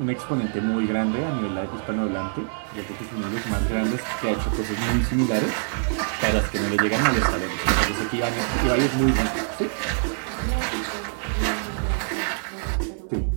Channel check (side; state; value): left; silent; digital silence